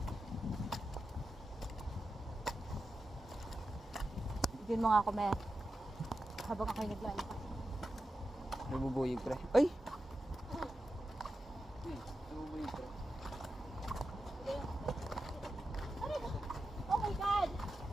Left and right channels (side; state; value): both; normal; correlation 0.90